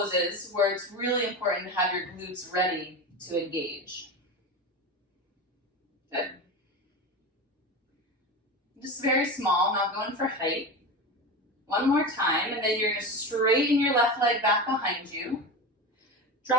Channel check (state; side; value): normal; both; correlation 0.24